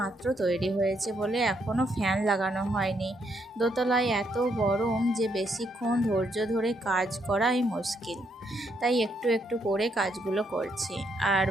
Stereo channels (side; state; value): both; normal; correlation 0.75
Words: তৈরি হয়েছে বলে এখনও ফ্যান লাগানো হয়নি। দোতলায় এত গরম যে বেশিক্ষণ ধৈর্য ধরে কাজ করাই মুশকিল, তাই একটু একটু করে কাজগুলো করছি। আর